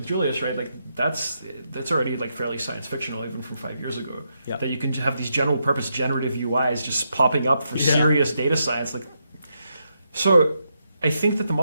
Julius, right? Like that's already like fairly science fictional even from 5 years ago. That you can have these general purpose generative UIs just popping up for serious data science. So I think that the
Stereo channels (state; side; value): inverted; both; correlation -0.82